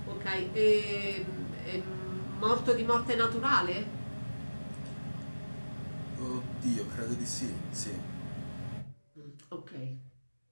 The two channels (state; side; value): inverted; both; correlation -1.00